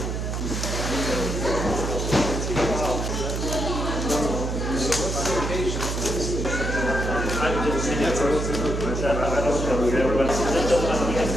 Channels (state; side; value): noise; right; hum, 2 dB below the sound